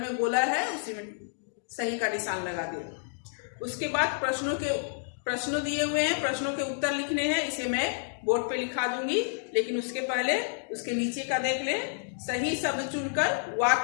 गोला है, उसी में सही का निशान लगा दे। उसके बाद प्रश्न दिए हुए हैं, प्रश्नों के उत्तर लिखने हैं। इसे मैं बोर्ड पे लिखा दूंगी, लेकिन उसके पहले उसके नीचे का देख ले। सही शब्द चुनकर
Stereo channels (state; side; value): silent; right; digital silence